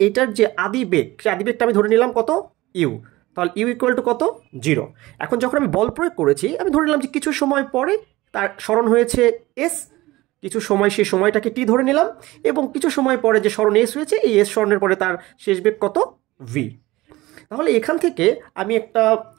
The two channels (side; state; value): left; quieter; 19.0 dB